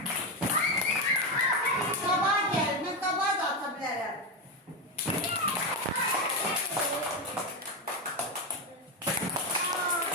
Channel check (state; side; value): normal; both; correlation 0.12